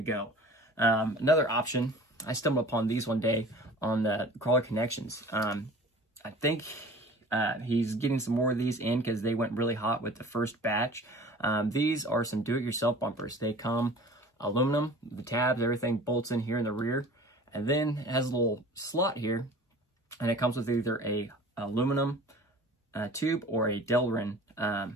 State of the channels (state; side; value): normal; both; correlation 0.43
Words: Another option, I stumbled upon these one day on the Crawler Connections. I think he's getting some more of these in because they went really hot with the first batch. These are some do-it-yourself bumpers. They come aluminum, the tabs, everything bolts in here in the rear, and then it has a little slot here, and it comes with either a aluminum tube or a Delrin